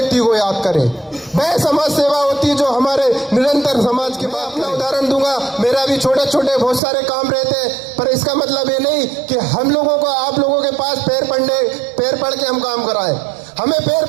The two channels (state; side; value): drops out; left; at 6.8 s